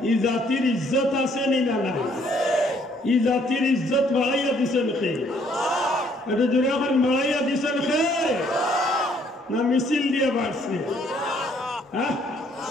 এই জাতির ইজ্জত আছে নি না নাই? এই জাতির ইজ্জত বাড়াইয়া দিছেন খে? এটা জোরে এখন বাড়াইয়া দিছেন খে না মিছিল দিয়ে বাড়ছে? হ্যাঁ,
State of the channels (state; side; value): normal; both; correlation 0.65